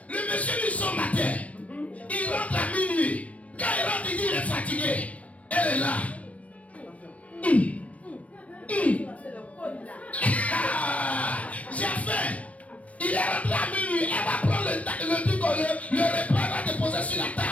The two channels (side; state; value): right; late; 0.066 ms